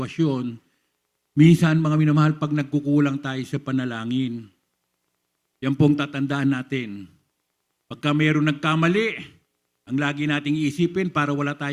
Minsan, mga minamahal, pag nagkukulang tayo sa panalangin, yan pong tatandaan natin. Pagka mayroong nagkamali, ang lagi nating iisipin para wala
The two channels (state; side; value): identical; both; correlation 1.00